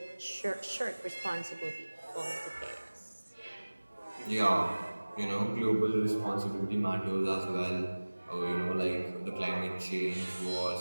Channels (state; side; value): inverted; both; correlation -1.00